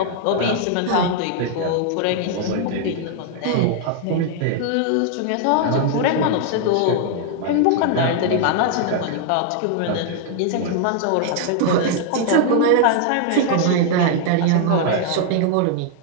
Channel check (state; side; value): different; both; correlation 0.00